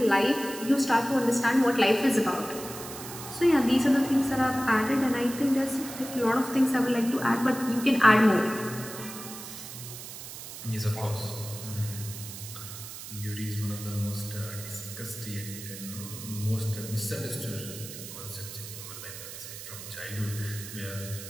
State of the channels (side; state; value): right; noise; hiss, 11 dB below the sound